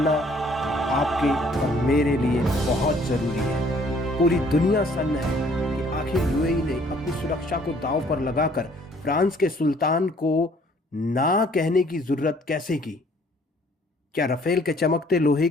आपके और मेरे लिए बहुत ज़रूरी है। पूरी दुनिया सन्न है कि आखिर यूएई ने अपनी सुरक्षा को दांव पर लगाकर फ्रांस के सुल्तान को ना कहने की ज़रूरत कैसे की? क्या राफेल के चमकते लोहे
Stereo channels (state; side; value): normal; both; correlation 0.60